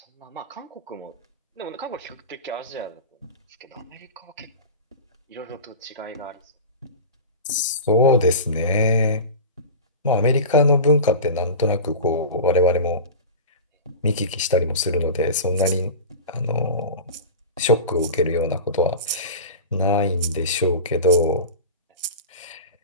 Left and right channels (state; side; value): inverted; both; correlation -0.30